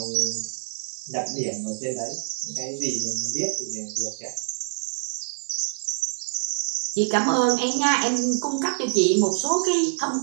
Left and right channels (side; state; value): left; silent; 61 dB below the other